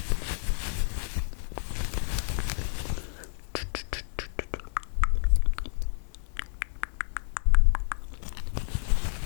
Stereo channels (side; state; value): right; silent; digital silence